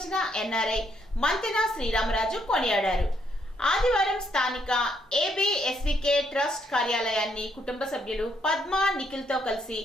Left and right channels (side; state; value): both; normal; correlation 0.73